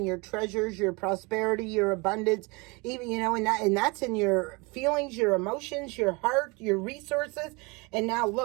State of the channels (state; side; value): quieter; left; 27.7 dB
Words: your treasures, your prosperity, your abundance, even, you know, and that's in your feelings, your emotions, your heart, your resources. And now